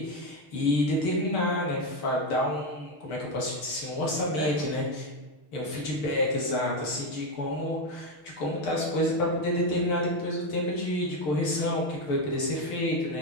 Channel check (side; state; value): right; late; 6.7 ms